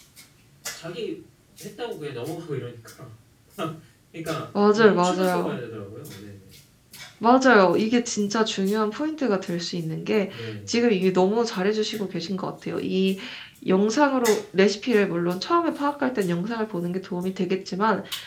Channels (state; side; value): identical; both; correlation 1.00